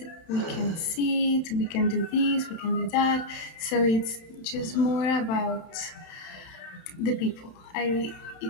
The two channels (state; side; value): late; right; 31 ms